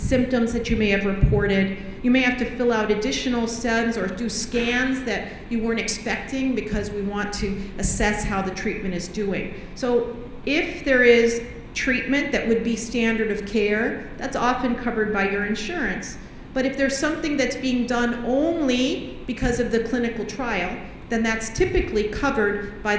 that you may have reported. You may have to fill out additional SEMS or do scans that you weren't expecting, because we want to assess how the treatment is doing. So if there is treatment that would be standard of care, that's often covered by your insurance. But if there's something that's being done only because of the clinical trial, then that's typically covered by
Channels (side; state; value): both; identical; correlation 1.00